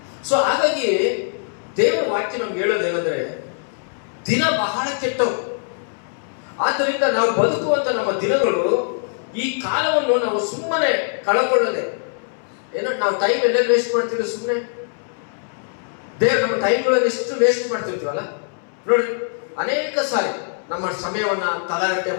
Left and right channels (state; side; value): silent; right; 64 dB below the other